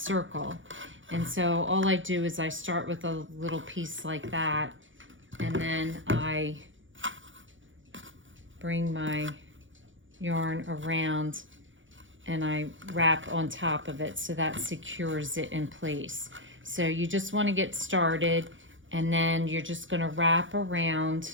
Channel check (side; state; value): left; late; 0.56 ms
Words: And so all I do is I start with a little piece like that, and then I bring my yarn around and I wrap on top of it, so that secures it in place. So you just want to get started, and then you're just going to wrap